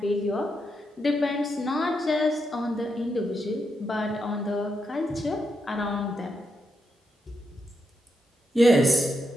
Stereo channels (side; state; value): both; normal; correlation 0.83